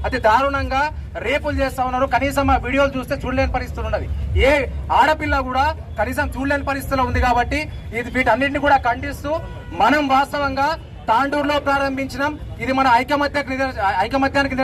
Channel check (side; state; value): both; identical; correlation 1.00